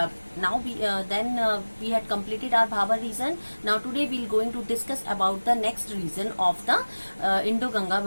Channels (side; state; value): both; inverted; correlation -1.00